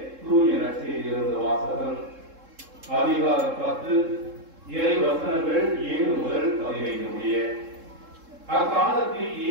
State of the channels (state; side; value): late; left; 3.7 ms